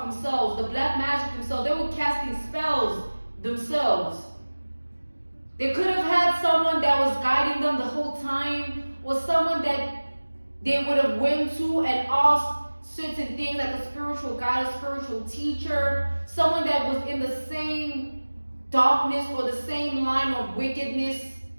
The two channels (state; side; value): inverted; both; correlation -1.00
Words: themselves, the black magic themselves. They were casting spells themselves. They could have had someone that was guiding them the whole time, or someone that they would have went to and asked certain things, like a spiritual guide, a spiritual teacher, someone that was in the same darkness or the same line of wickedness,